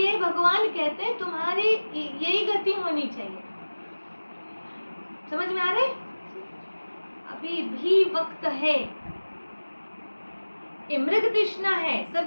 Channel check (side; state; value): both; inverted; correlation -1.00